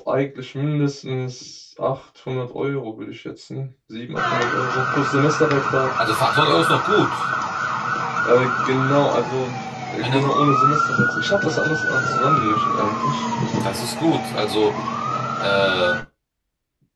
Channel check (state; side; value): identical; both; correlation 1.00